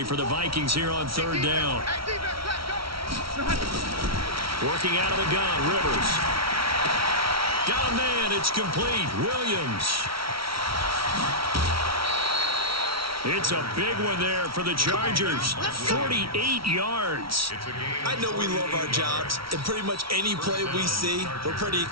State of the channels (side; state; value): left; late; 0.75 ms